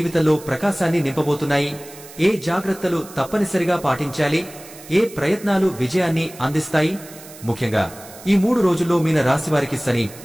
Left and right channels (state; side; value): noise; right; hiss, 18 dB below the sound